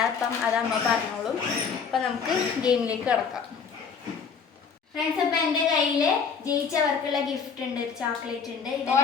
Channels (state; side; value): quieter; right; 6.1 dB